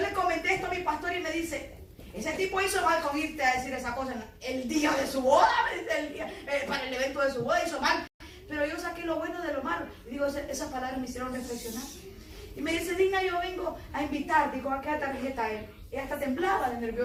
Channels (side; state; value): both; identical; correlation 1.00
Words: comenté esto a mi pastor y me dice, ese tipo hizo mal con irte a decir esa cosa el día de su boda, para el evento de su boda hizo mal. Pero yo saqué lo bueno de lo malo. Y digo, esas palabras me hicieron reflexionar. Y me dice, Digna, yo vengo a invitarte. Digo, ¿a qué tarjeta él? Ella hasta temblaba de